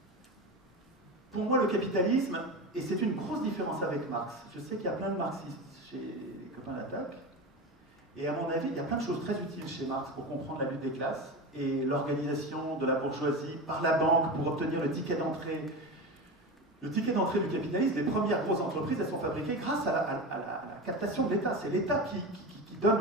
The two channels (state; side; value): normal; both; correlation 0.24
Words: pour moi, le capitalisme, et c'est une grosse différence avec Marx. Je sais qu'il y a plein de marxistes chez les copains d'attaque. Et à mon avis, il y a plein de choses très utiles chez Marx pour comprendre la lutte des classes et l'organisation de la bourgeoisie par la banque pour obtenir le ticket d'entrée. Le ticket d'entrée du capitalisme, les premières grosses entreprises, elles sont fabriquées grâce à la captation de l'État. C'est l'État qui